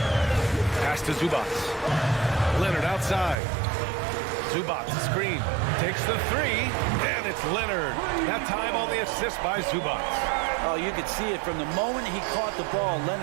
Pass to Zubac. Leonard outside. Zubac, screen. Takes the three, and it's Leonard. That time on the assist by Zubac. Oh, you could see it from the moment he caught the ball.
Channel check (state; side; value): drops out; left; at 3.4 s